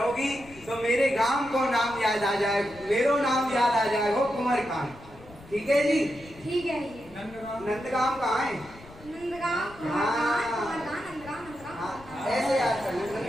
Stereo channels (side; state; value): left; noise; rumble, 21 dB below the sound